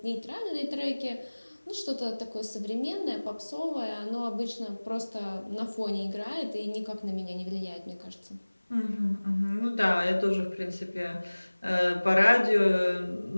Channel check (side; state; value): both; inverted; correlation -1.00